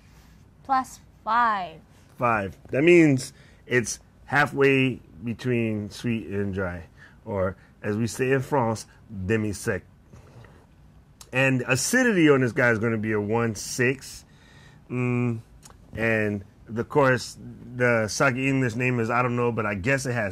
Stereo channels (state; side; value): identical; both; correlation 1.00